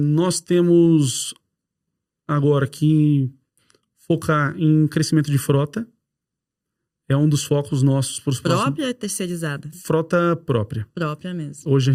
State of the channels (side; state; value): both; identical; correlation 1.00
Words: temos agora que focar em crescimento de frota. É um dos focos nossos para os próximos... Própria ou terceirizada? Frota própria. Própria mesmo. Hoje a